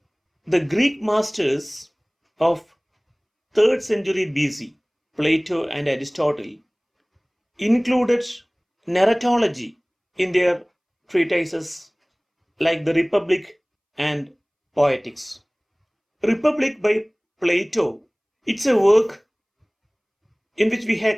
The Greek masters of 3rd century BC, Plato and Aristotle, included narratology in their treatises like the Republic and Poetics. Republic by Plato, it's a work in which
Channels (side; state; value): both; identical; correlation 1.00